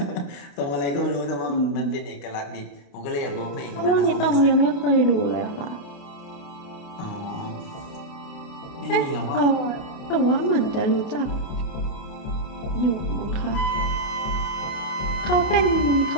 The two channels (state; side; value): late; right; 29 ms